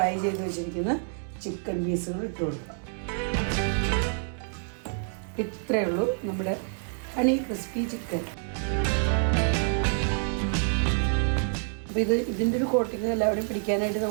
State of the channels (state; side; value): silent; left; 60 dB below the other